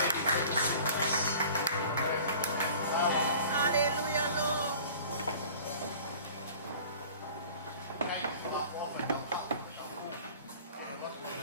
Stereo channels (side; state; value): both; inverted; correlation -0.44